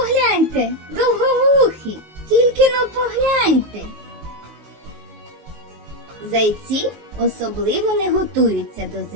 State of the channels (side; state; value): left; late; 19 ms